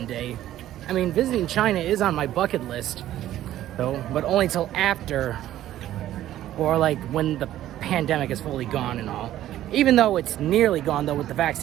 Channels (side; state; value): left; quieter; 13.1 dB